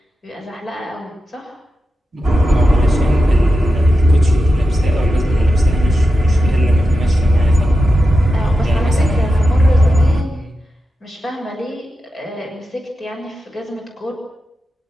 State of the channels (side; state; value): both; normal; correlation 0.90